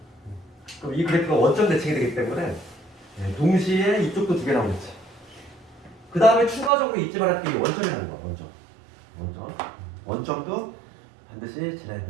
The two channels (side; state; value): left; drops out; at 6.7 s